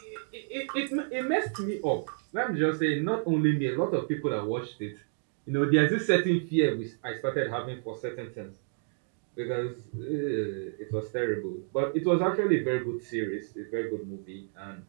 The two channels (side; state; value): left; silent; digital silence